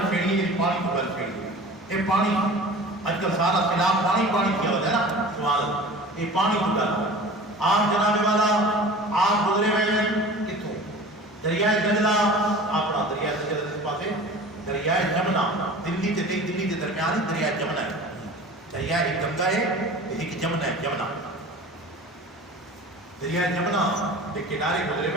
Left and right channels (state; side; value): normal; both; correlation 0.40